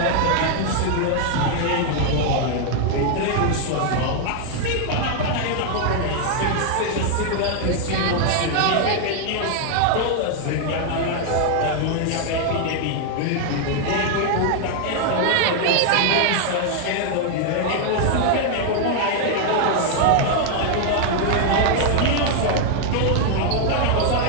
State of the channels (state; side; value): different; both; correlation 0.00